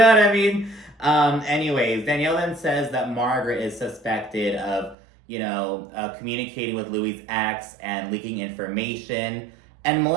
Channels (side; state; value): left; drops out; at 5.0 s